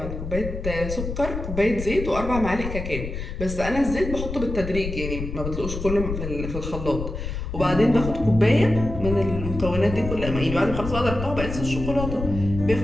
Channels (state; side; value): noise; left; rumble, 6 dB below the sound